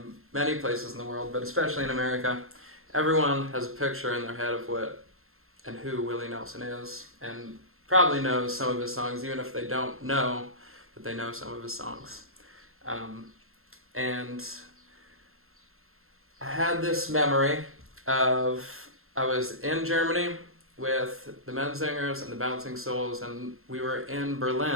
many places in the world, but especially in America, everyone has a picture in their head of what and who Willie Nelson is, and probably knows some of his songs, even if they don't know that they know some of his songs. And I had this memory of, I was in Germany with the Menzingers and the Bouncing Souls, and we were in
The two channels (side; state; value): left; late; 0.62 ms